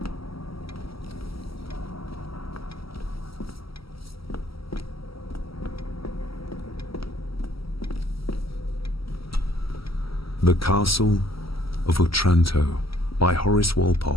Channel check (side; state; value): right; late; 0.75 ms